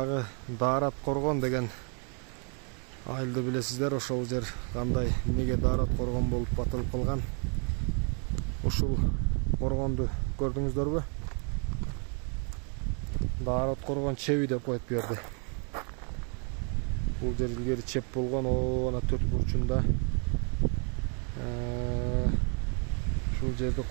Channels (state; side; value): quieter; left; 38.8 dB